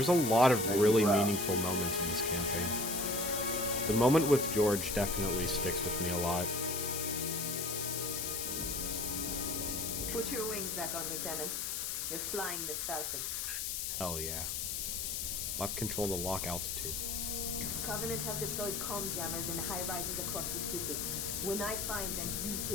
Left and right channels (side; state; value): left; noise; hiss, 2 dB below the sound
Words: a lot of really meaningful moments in this campaign. The moment with George definitely sticks with me a lot. Put your wings back on, Lieutenant. You're flying this Falcon. Hell yeah. Left control to lock altitude. Covenant have deployed comm jammers in high rises across the city. When I find them, you